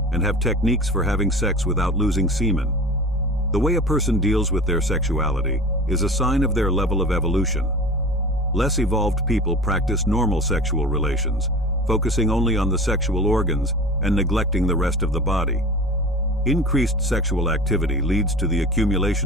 and have techniques for having sex without losing semen. The way a person deals with their sexuality is a sign of their level of evolution. Less evolved people practice normal sexual relations, focusing only on the sexual organs and neglecting the rest of the body. Increased sexual activity leads to the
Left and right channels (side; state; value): both; normal; correlation 0.37